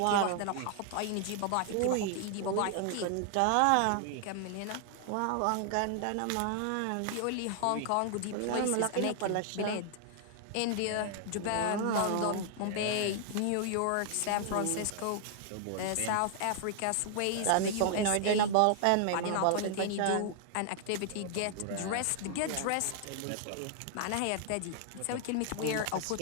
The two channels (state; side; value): different; both; correlation 0.00